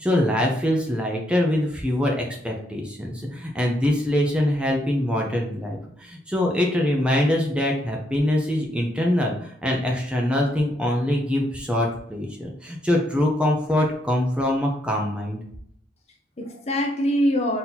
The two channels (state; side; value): normal; both; correlation 0.76